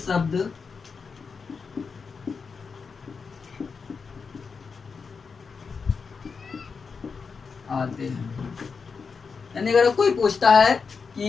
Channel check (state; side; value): quieter; right; 5.3 dB